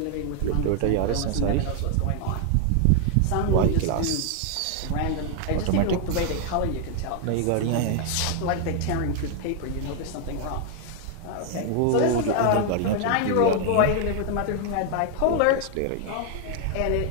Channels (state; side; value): different; both; correlation 0.00